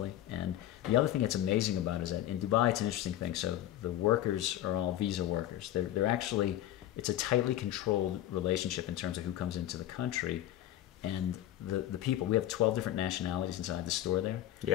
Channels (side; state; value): right; quieter; 13.1 dB